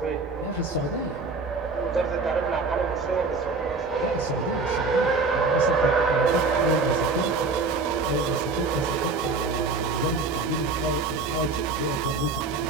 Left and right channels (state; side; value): quieter; left; 3.9 dB